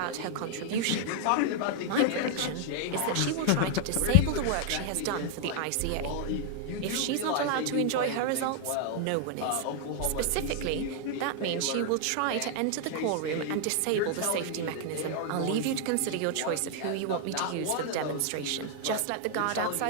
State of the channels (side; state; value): both; different; correlation 0.00